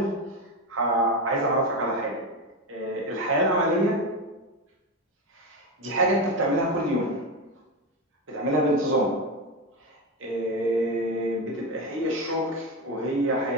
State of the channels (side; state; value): both; normal; correlation 0.16